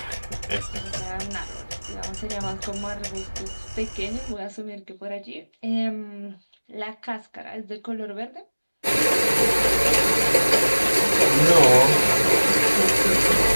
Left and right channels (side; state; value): both; inverted; correlation -1.00